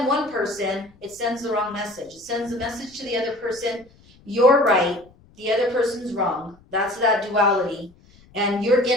one person, it sends the wrong message. It sends the message to the other person, you're right, the other person's wrong. That's that duality. And you're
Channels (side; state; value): left; noise; rumble, 28 dB below the sound